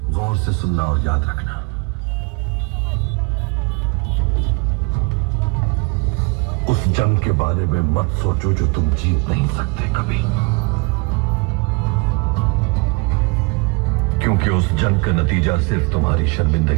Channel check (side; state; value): left; quieter; 29.2 dB